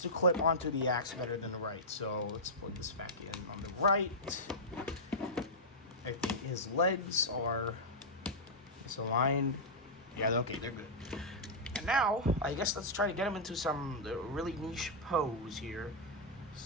to clip onto the axe better than the right. So let's plug this back in on the right. I think his legs are aligned. Yeah, okay, they're good. And now, I guess let's try to get him into some really niche pose here.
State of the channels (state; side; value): normal; both; correlation -0.08